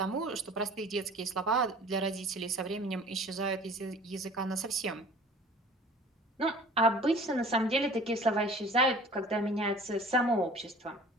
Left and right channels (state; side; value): normal; both; correlation 0.46